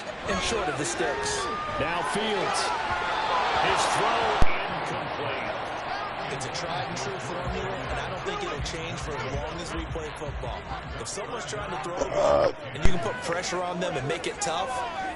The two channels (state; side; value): identical; both; correlation 1.00